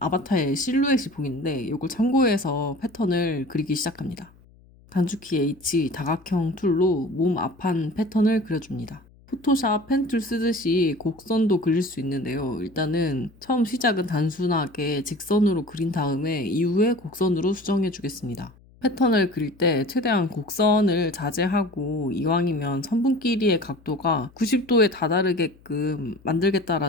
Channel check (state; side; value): noise; left; hum, 27 dB below the sound